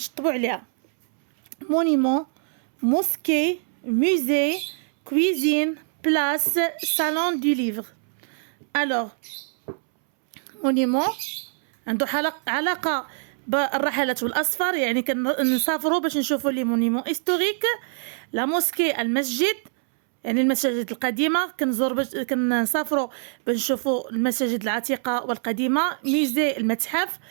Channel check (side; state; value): left; silent; 62 dB below the other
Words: عليها. مونيمون، موسكي، musée, cuisine, place, salon du livre. Alors, monument عنده علاقة بالرحلات والأسفار، يعني كنسافروا باش نشوفوا لي مونيمون هيستوريك. لا موسكي المسجد، يعني المساجد القديمة، كنسافروا باش نشوفوا المساجد العتيقة والقديمة. ميزي المتحف،